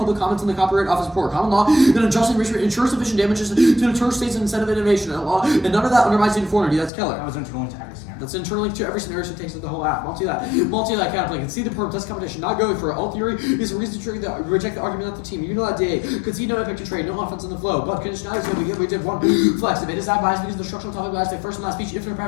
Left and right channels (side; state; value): right; drops out; at 6.9 s